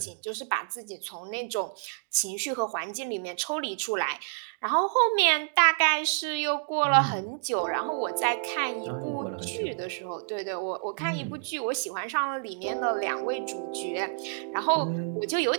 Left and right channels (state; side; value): silent; left; digital silence